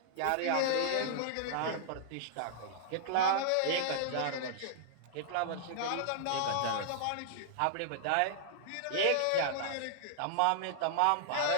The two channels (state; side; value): different; both; correlation -0.01